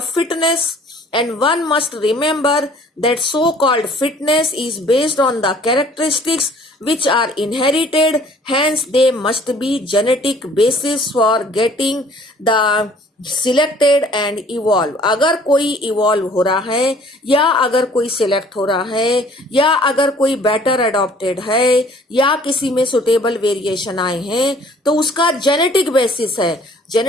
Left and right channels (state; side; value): normal; both; correlation 0.54